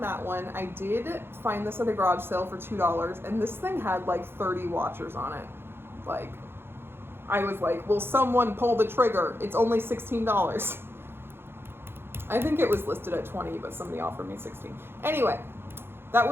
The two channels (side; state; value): left; late; 0.11 ms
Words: that one. I did find this at a garage sale for $2, and this thing had like 30 watchers on it. Like, I was like, will someone pull the trigger? It's only $16. I think it was listed at 20, but somebody offered me 16. Anyway, that